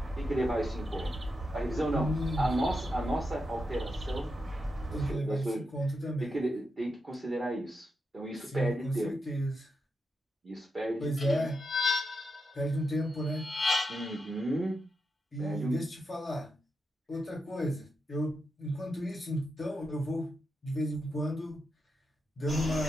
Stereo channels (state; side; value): normal; both; correlation 0.86